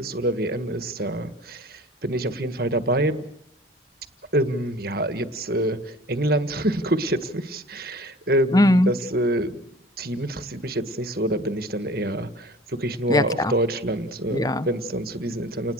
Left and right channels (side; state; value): both; normal; correlation 0.46